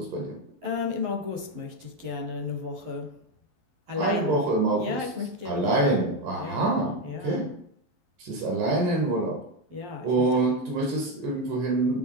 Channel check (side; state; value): left; late; 11 ms